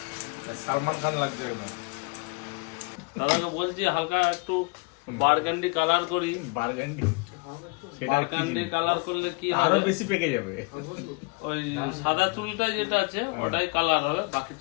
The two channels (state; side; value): quieter; right; 30.4 dB